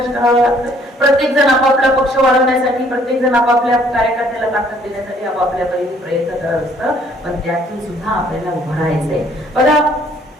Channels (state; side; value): normal; both; correlation 0.62